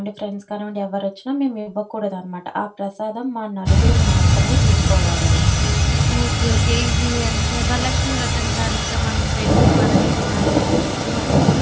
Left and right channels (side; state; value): both; identical; correlation 1.00